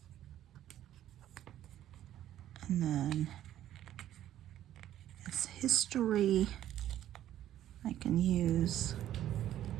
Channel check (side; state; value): left; quieter; 12.2 dB